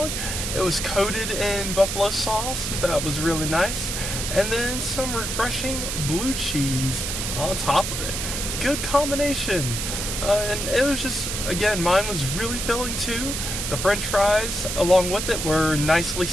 It was coated in buffalo sauce. That was really nice. And then some refreshing blue cheese on top of it. Good combination. And it was just, again, mine was really filling too. The French fries, along with it, were nicely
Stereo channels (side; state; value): right; noise; hiss, 3 dB below the sound